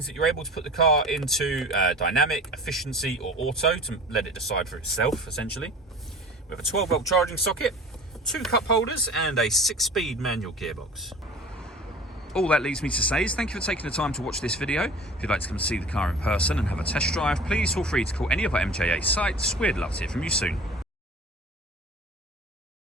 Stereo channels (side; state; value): both; normal; correlation 0.41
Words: that you're able to put the car into dynamic, efficiency, or auto to let it decide for itself, essentially. We have a 12-volt charging socket, 2 cup holders, and a 6-speed manual gearbox. All that leaves me to say is thank you for taking the time to watch this video. If you'd like to come see the car in person and have a test drive, please feel free to call any of our MJA sites. We'd love to hear from you soon.